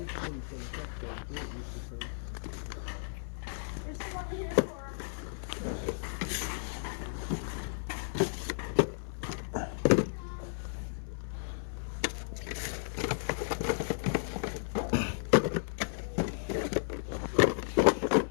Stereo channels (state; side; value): silent; right; 55 dB below the other